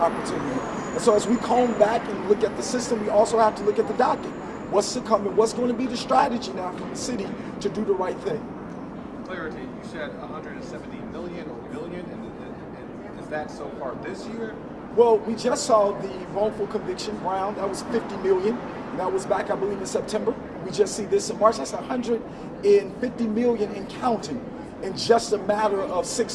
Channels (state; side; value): identical; both; correlation 1.00